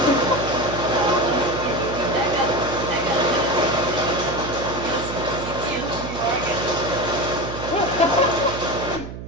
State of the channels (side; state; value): right; noise; hum, 10 dB below the sound